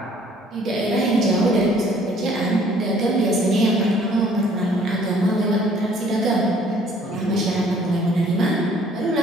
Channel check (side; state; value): both; normal; correlation 0.58